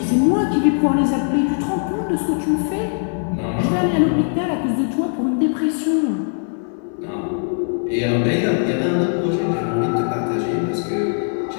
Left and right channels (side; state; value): right; silent; 63 dB below the other